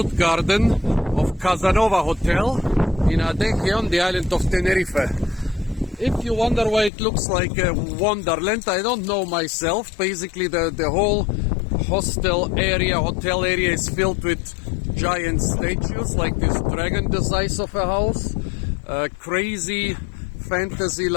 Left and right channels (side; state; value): right; drops out; at 6.9 s